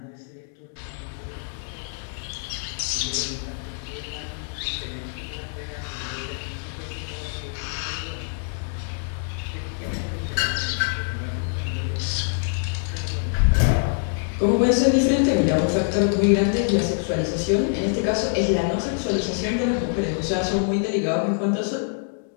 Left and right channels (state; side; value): silent; right; 62 dB below the other